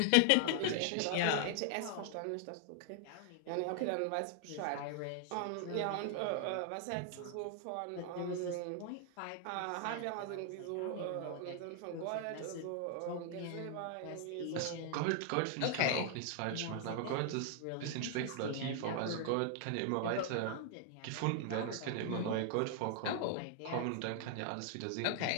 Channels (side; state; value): both; different; correlation 0.00